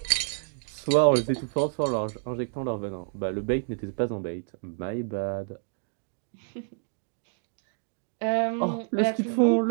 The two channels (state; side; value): silent; left; 59 dB below the other